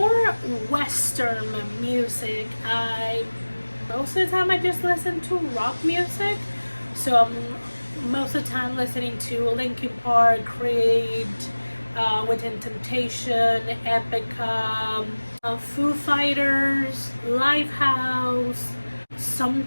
Western music, most of the time I just listen to rock music. So I'm most of the time listening to Linkin Park, Creed, Within Temptation, Epica, Foo Fighters, Lifehouse.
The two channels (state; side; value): inverted; both; correlation -1.00